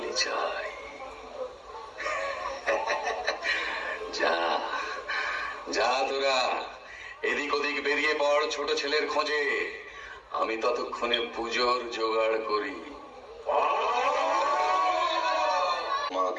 চাই। যা যা তোরা এদিক ওদিক বেরিয়ে পড় ছোট ছেলের খোঁজে। আমি ততক্ষণে পুজোর জোগাড় করি।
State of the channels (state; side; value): identical; both; correlation 1.00